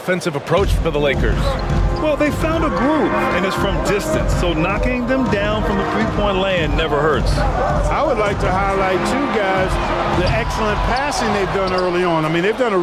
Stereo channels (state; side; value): identical; both; correlation 1.00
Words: approach for the Lakers? Well, they found a groove, and it's from distance, so knocking them down from the three-point land never hurts. I would like to highlight, too, guys, the excellent passing they've done early on. I mean, they've done a